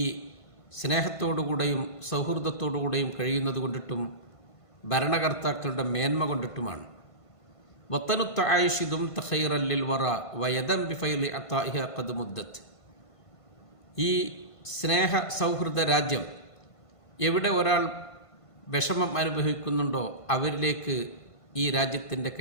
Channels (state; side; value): late; right; 1.5 ms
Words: സ്നേഹത്തോടുകൂടെയും സൗഹൃദത്തോടുകൂടെയും കഴിയുന്നത് കൊണ്ടിട്ടും ഭരണകർത്താക്കളുടെ മേന്മ കൊണ്ടിട്ടുമാണ്. വത്തനുത്ത് ആയിഷിദും തഖൈറല്ലിൽ വറ വയദം ബിഫൈലി അത്താഇഹ ഖദ് മുദ്ദത്ത്, ഈ സ്നേഹ സൗഹൃദ രാജ്യം എവിടെ ഒരാൾ വിഷമം അനുഭവിക്കുന്നുണ്ടോ അവരിലേക്ക് ഈ രാജ്യത്തിൻ്റെ